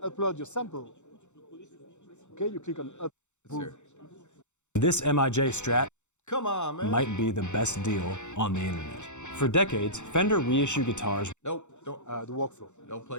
your sample. Okay, you click on upload. Let's hear it. This MIJ Strat Come on, man. might be the best deal on the internet. For decades, Fender reissue guitars. Nope, don't The workflow.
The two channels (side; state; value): right; late; 0.84 ms